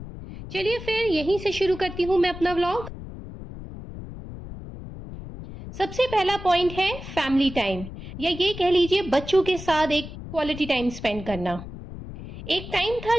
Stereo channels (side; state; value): left; noise; rumble, 11 dB below the sound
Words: चलिए फिर यहीं से शुरू करती हूँ मैं अपना व्लॉग। सबसे पहला पॉइंट है फैमिली टाइम, या ये कह लीजिए बच्चों के साथ एक क्वालिटी टाइम स्पेंड करना। एक टाइम था